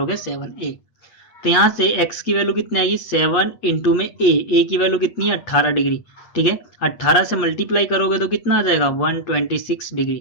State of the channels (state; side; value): late; right; 8.5 ms